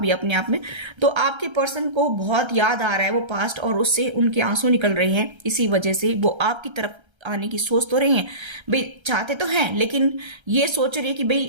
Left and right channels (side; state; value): left; late; 1.3 ms